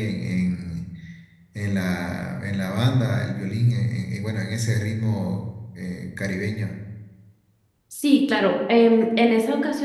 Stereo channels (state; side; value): identical; both; correlation 1.00